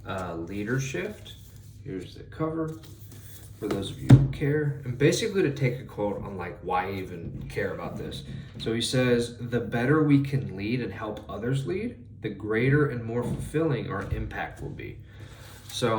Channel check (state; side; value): identical; both; correlation 1.00